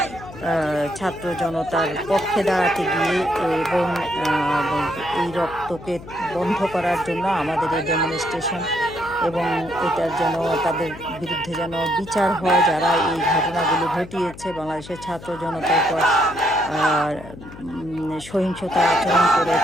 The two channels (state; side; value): noise; left; hum, 16 dB below the sound